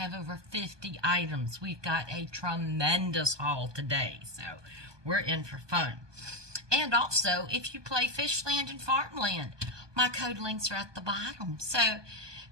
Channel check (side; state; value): left; late; 1.2 ms